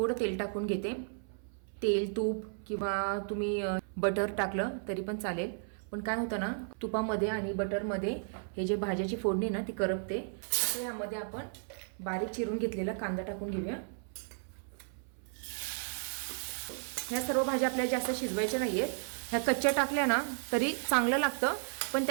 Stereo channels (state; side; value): silent; left; 55 dB below the other